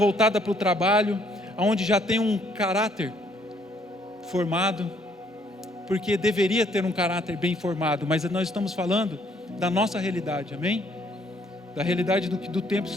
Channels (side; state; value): both; normal; correlation 0.66